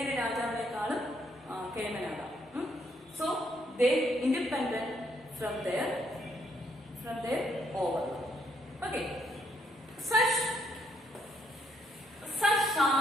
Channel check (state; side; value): normal; both; correlation 0.72